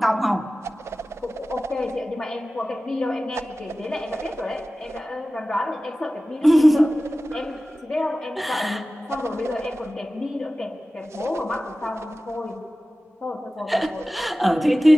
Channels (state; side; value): normal; both; correlation 0.96